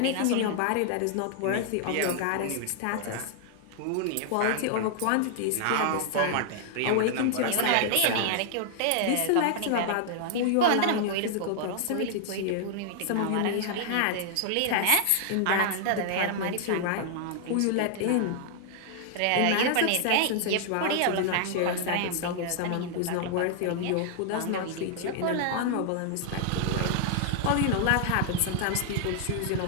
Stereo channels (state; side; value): different; both; correlation 0.00